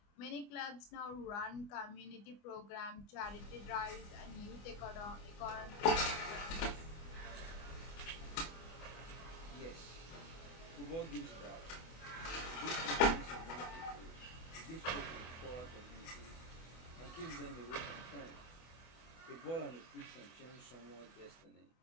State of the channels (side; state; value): right; late; 25 ms